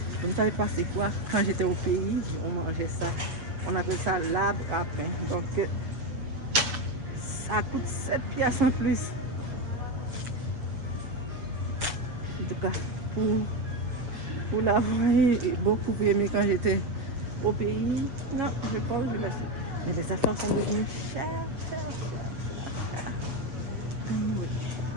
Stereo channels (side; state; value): left; late; 7.5 ms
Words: Je ne savais pas c'est quoi. Quand j'étais au pays, on mangeait ça. On appelle ça l'arbre à pain. Donc, ça coûte 7 piastres en plus. En tout cas, pour l'avoir beaucoup aimé quand j'étais au pays, non, je pense que je laisse. Mais les affaires sont devenues chères. Oui.